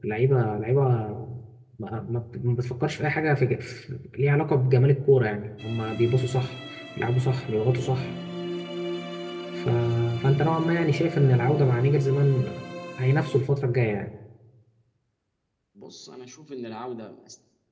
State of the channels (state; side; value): identical; both; correlation 1.00